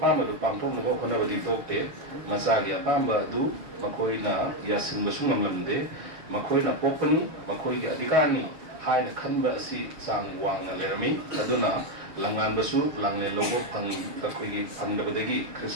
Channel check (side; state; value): left; late; 6.3 ms